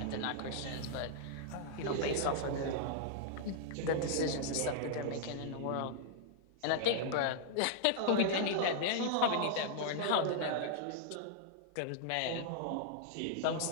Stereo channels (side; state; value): both; different; correlation -0.02